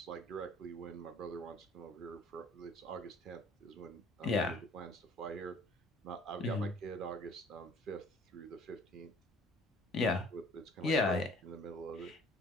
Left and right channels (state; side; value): normal; both; correlation 0.54